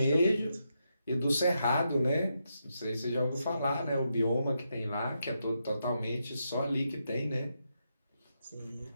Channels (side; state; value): both; inverted; correlation -0.83